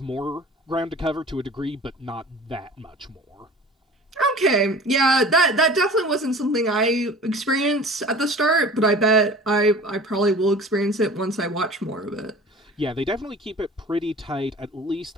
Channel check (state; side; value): normal; both; correlation 0.42